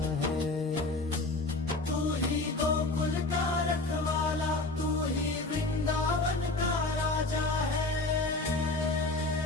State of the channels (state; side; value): quieter; right; 3.1 dB